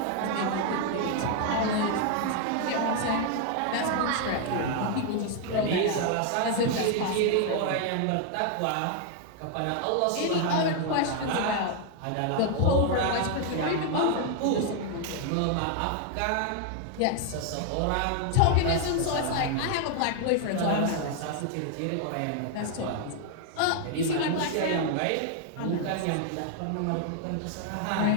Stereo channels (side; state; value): both; different; correlation 0.00